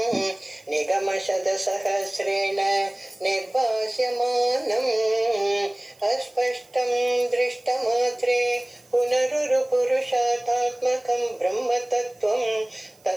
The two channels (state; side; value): noise; right; hiss, 30 dB below the sound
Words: निगमशतसहस्रेण निर्भास्यमानम् अस्पष्टं दृष्टमात्रे पुनरुरुपुरुषार्थात्मकं ब्रह्मतत्त्वं